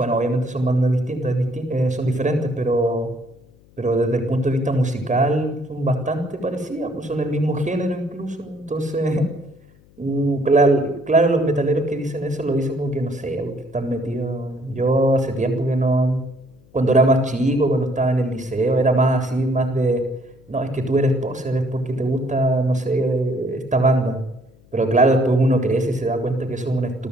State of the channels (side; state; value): left; noise; hum, 28 dB below the sound